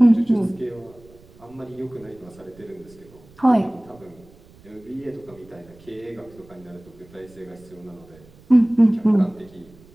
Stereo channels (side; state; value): right; noise; rumble, 25 dB below the sound